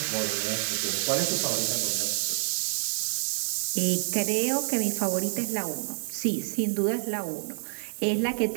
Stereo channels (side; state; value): left; silent; digital silence